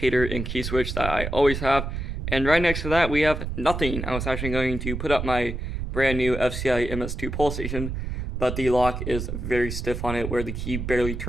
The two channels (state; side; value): noise; right; rumble, 5 dB below the sound